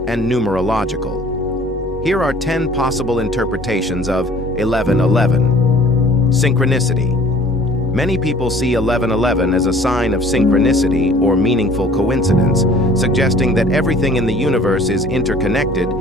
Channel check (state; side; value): normal; both; correlation 0.51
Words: and numerological. Here are 10 possible interpretations of 1111. Synchronicity. Many people see 1111 as a sign of synchronicity or meaningful coincidence, suggesting that everything in the universe is interconnected